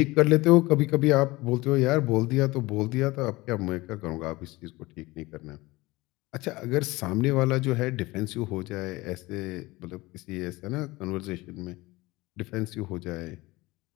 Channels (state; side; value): quieter; right; 21.1 dB